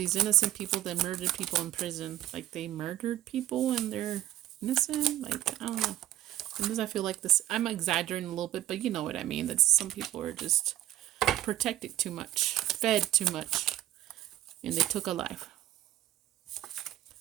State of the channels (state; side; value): quieter; left; 13.5 dB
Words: innocent people that murdered people in prison. Like, they murdered people and they're innocent. Like, I don't know. Sometimes I feel like this, I'm exaggerating a little bit, but you know what I mean. That some people are just protected too much, fed too much, and they took a life.